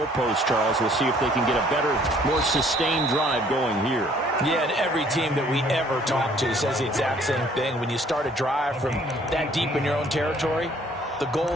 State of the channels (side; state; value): both; normal; correlation 0.59